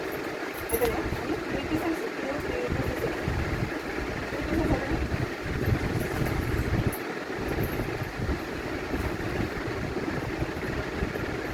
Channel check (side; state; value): both; identical; correlation 1.00